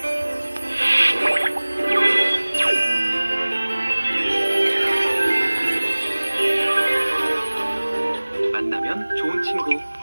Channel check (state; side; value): inverted; both; correlation -1.00